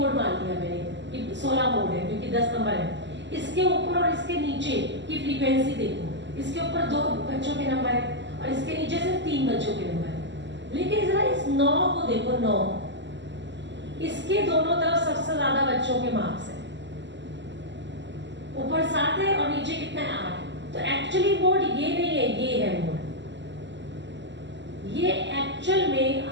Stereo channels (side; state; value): left; late; 0.53 ms